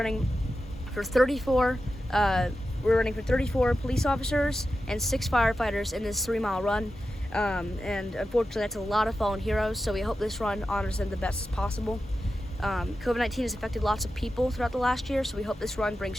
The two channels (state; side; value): normal; both; correlation 0.91